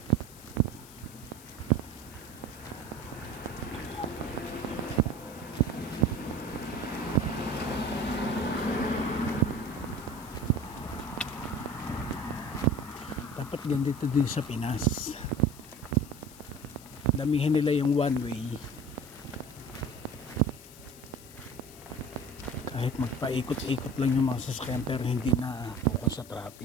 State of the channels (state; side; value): noise; left; hiss, 19 dB below the sound